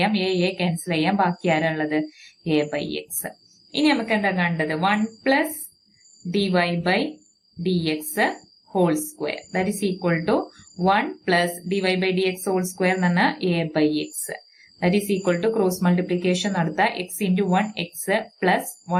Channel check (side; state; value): both; identical; correlation 1.00